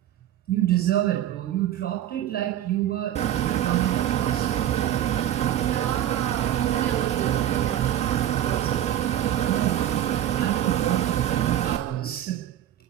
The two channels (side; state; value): left; quieter; 11.8 dB